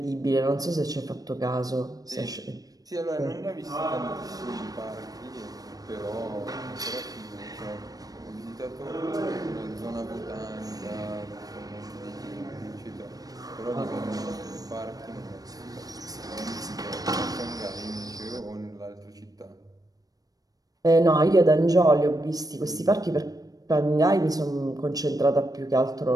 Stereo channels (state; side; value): late; left; 0.18 ms